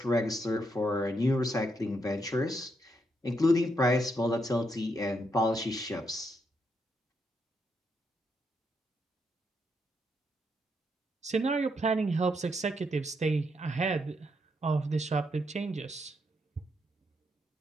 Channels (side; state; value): both; normal; correlation 0.78